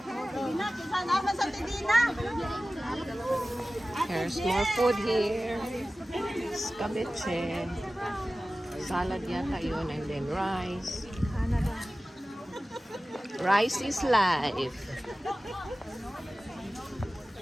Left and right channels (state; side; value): normal; both; correlation 0.96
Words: There's more food here. Escabeche. Salad yata yun. And then rice. Rice is life.